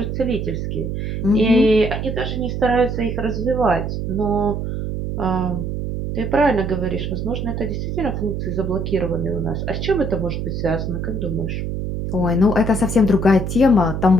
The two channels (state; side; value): noise; right; hum, 3 dB below the sound